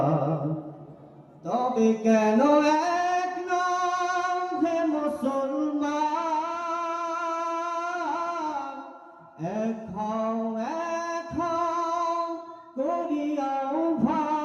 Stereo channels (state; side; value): identical; both; correlation 1.00